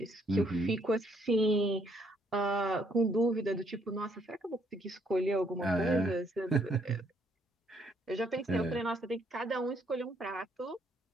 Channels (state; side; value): normal; both; correlation 0.69